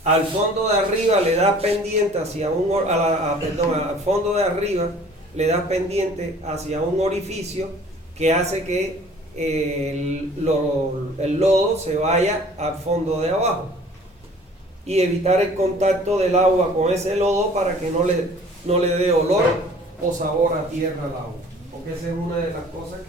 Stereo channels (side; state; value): both; normal; correlation 0.50